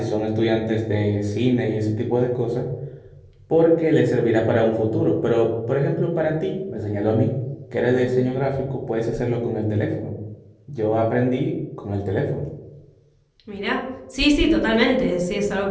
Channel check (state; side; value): identical; both; correlation 1.00